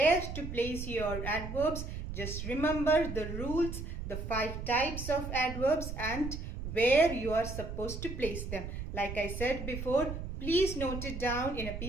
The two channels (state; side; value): noise; right; rumble, 7 dB below the sound